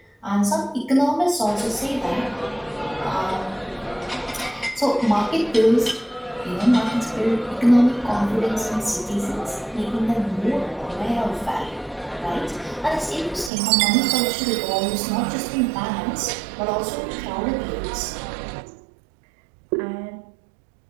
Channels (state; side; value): drops out; left; at 13.5 s